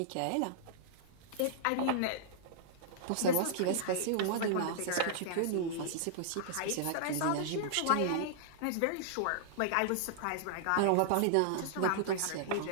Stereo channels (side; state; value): both; different; correlation -0.01